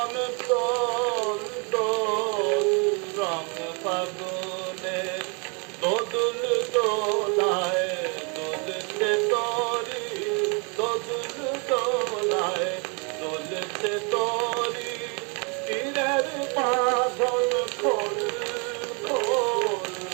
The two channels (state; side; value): quieter; left; 34.8 dB